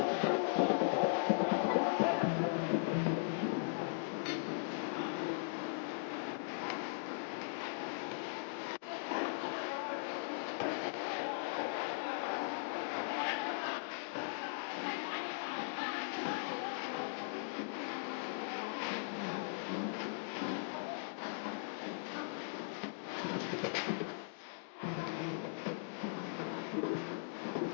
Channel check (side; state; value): right; silent; digital silence